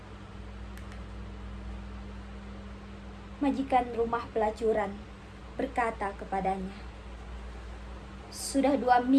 Majikan rumah pelacuran berkata kepadanya, "Sudah 2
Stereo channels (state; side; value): identical; both; correlation 1.00